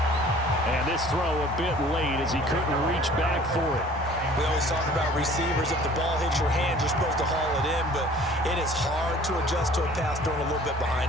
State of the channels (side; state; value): both; normal; correlation 0.50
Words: And this throw a bit late as he couldn't reach back for it. We always talk about receivers. If the ball hits your hand, you're supposed to haul it in, but it is hard to adjust to a pass thrown a little bit